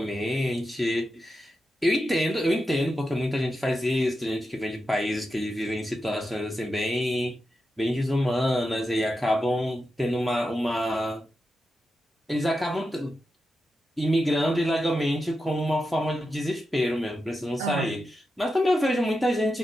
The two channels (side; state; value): both; normal; correlation 0.89